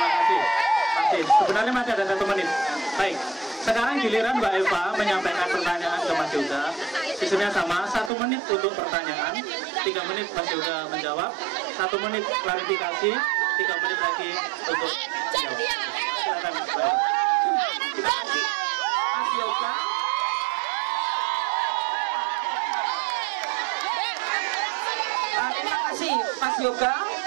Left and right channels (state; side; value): drops out; left; at 8.1 s